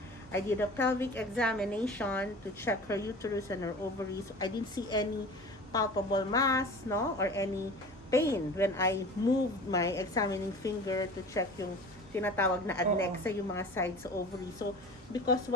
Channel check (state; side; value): normal; both; correlation 0.37